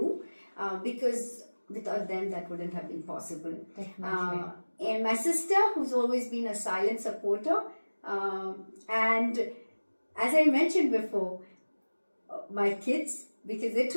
because without them that wouldn't have been possible. Definitely. And my sister, who's always been a silent supporter, and as I mentioned before, my kids, because they're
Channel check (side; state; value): both; inverted; correlation -1.00